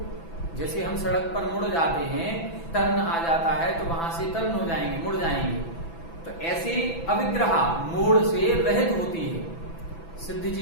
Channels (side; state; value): right; late; 6.0 ms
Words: जैसे हम सड़क पर मुड़ जाते हैं, टर्न आ जाता है तो वहां से टर्न हो जाएंगे, मुड़ जाएंगे। तो ऐसे अविग्रहा, मोड़ से रहित होती है। सिद्ध